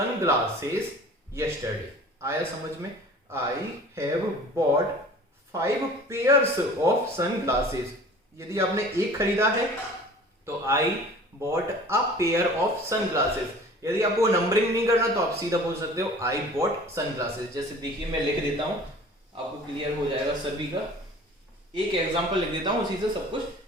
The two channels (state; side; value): normal; both; correlation 0.45